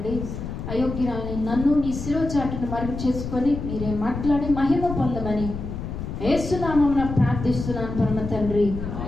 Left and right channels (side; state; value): left; noise; rumble, 6 dB below the sound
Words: అయోగ్యురాలని నన్ను నీ శిరోచాటును మరుగు చేసుకొని మీరే మాట్లాడి మహిమ పొందమని యేసునామమున ప్రార్థిస్తున్నాను పరమ తండ్రి,